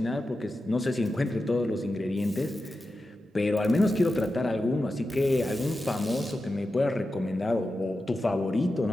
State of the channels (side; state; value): both; normal; correlation 0.91